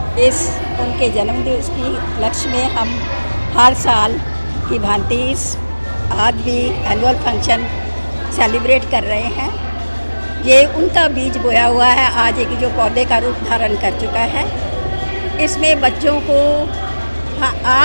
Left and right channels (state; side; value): inverted; both; correlation -1.00